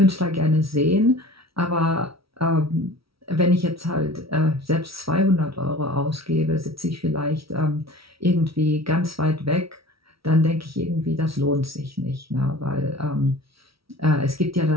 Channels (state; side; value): late; left; 0.75 ms